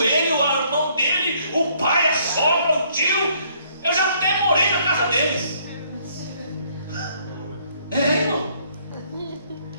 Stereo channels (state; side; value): inverted; both; correlation -0.65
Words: ele, o irmão dele, o pai, a sogra, o tio. Eu já até morei na casa deles. É, irmão.